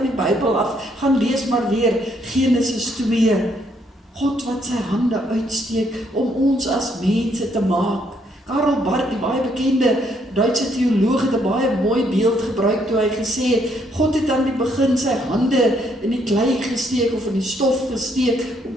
die Bybel af, gaan lees maar weer Genesis 2. God wat sy hande uitsteek om ons as mense te maak. Karl Barth, die baie bekende Duitse teoloog, het 'n baie mooi beeld gebruik toe hy gesê het, God het aan die begin sy hande in die klei gesteek of in die stof gesteek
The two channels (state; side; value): normal; both; correlation 0.71